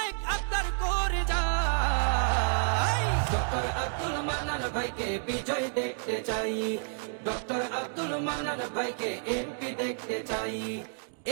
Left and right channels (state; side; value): silent; left; digital silence